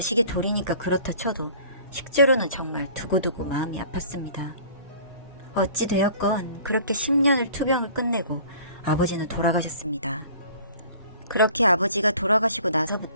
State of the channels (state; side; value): inverted; both; correlation -0.49